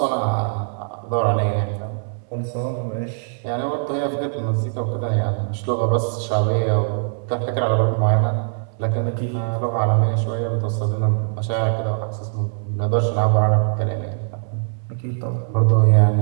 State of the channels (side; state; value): left; silent; 65 dB below the other